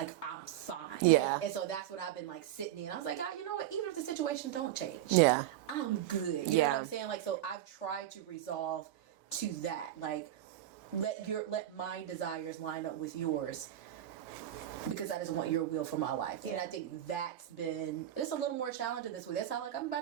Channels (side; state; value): left; quieter; 12.4 dB